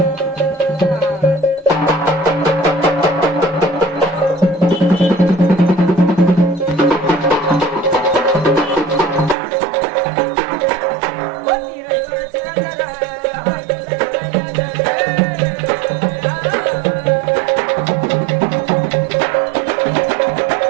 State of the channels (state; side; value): drops out; left; at 9.3 s